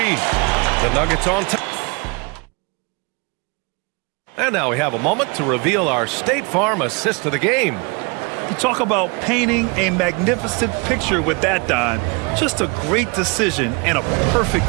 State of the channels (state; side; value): quieter; left; 30.1 dB